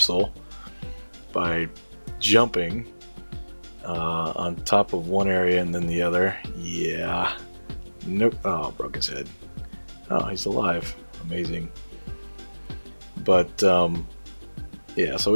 by jumping on top of one area and then the other. Yeah. Nope. Oh, broke his head. Oh, he's alive. Amazing. But yeah, so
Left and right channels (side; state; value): both; inverted; correlation -1.00